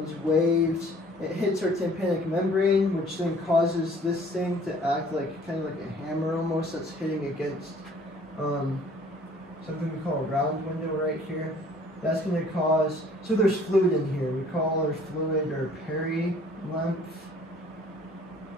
waves. It hits our tympanic membrane, which then causes this thing to act like kind of like a hammer almost that's hitting against something we call a round window right here. That's going to cause, so there's fluid in here. We call our fluid our perilymph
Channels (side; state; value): both; normal; correlation 0.55